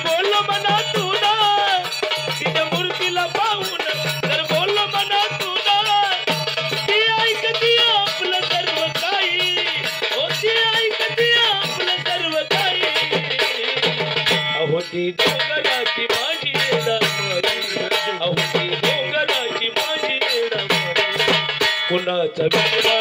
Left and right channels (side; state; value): both; identical; correlation 1.00